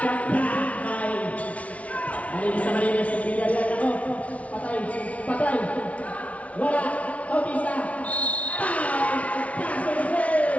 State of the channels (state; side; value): late; right; 0.066 ms